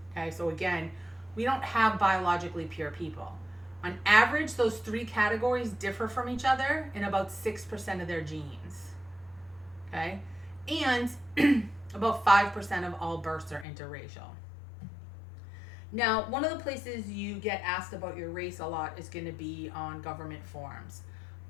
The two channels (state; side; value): drops out; right; at 13.7 s